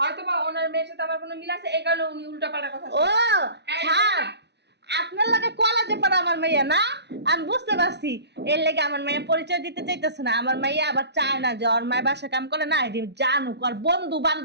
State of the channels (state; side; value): late; left; 0.50 ms